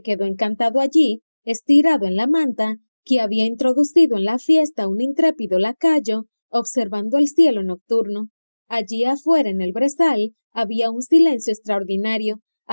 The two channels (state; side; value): inverted; both; correlation -1.00